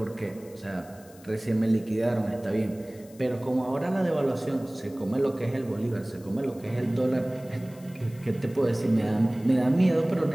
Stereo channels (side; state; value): left; noise; hiss, 25 dB below the sound